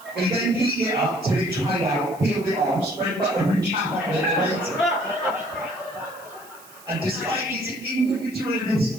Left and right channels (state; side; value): noise; right; hiss, 22 dB below the sound